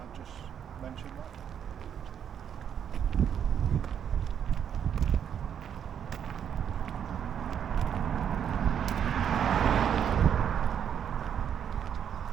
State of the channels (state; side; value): quieter; left; 8.5 dB